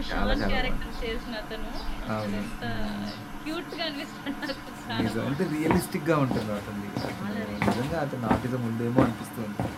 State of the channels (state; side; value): identical; both; correlation 1.00